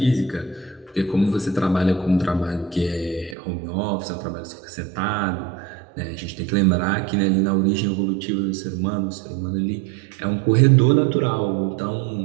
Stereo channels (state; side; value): drops out; left; at 3.4 s